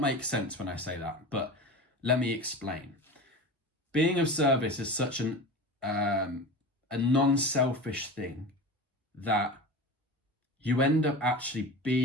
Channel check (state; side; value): normal; both; correlation 0.30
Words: make sense when I say that, but let me explain. Being of service is such a non-selfish thing that you end up actually